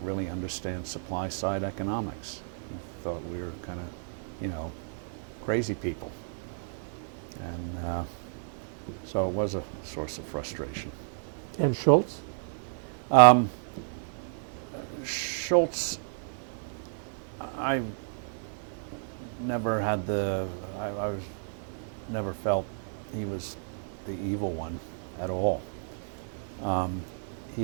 understand supply side economics. He thought we were kind of, crazy people. And so it was a source of frustration. And Schultz? Schultz, I never had I never felt he was the evil one at all.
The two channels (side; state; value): left; silent; digital silence